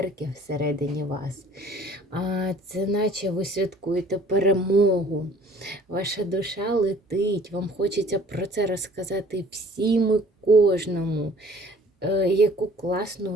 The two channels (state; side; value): normal; both; correlation 0.53